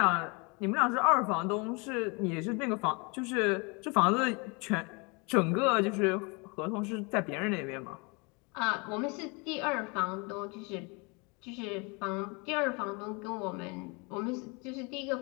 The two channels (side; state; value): right; quieter; 30.3 dB